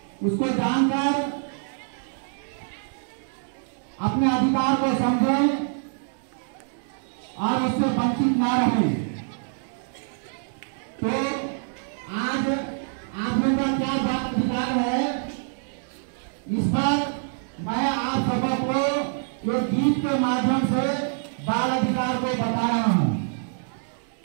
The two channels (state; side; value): silent; left; digital silence